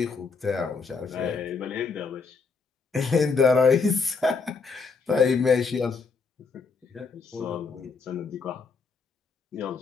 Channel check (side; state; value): right; quieter; 4.8 dB